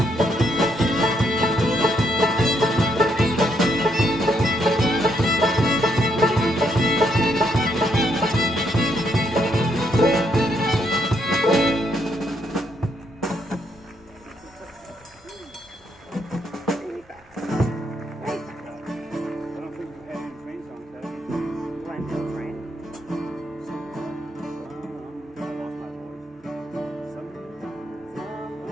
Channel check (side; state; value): both; normal; correlation 0.75